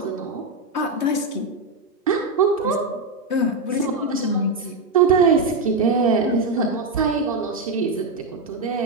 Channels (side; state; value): left; quieter; 3.3 dB